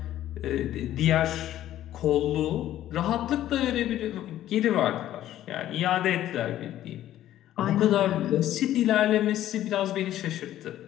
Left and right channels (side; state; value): right; quieter; 12.8 dB